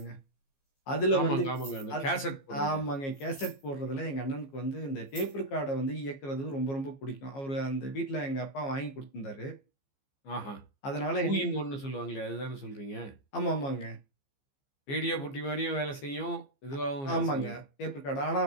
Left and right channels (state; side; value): late; right; 15 ms